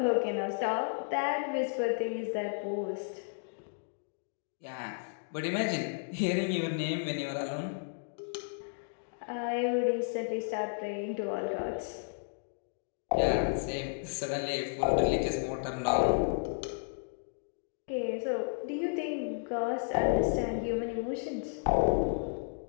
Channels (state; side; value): silent; right; digital silence